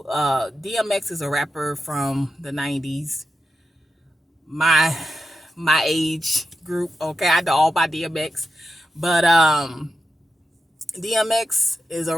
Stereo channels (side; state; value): both; normal; correlation 0.89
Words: DMX is a rapper from the 90s, my age group. Okay, I know all about DMX, but DMX is a